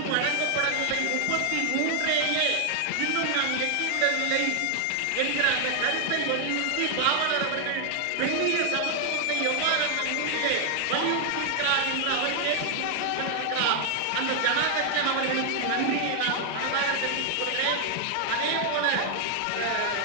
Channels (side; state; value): both; different; correlation 0.00